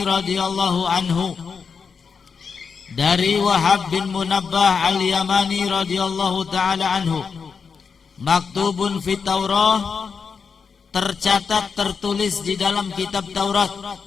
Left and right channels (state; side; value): quieter; right; 5.7 dB